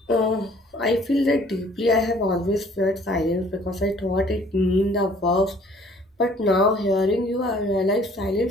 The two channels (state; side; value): normal; both; correlation 0.56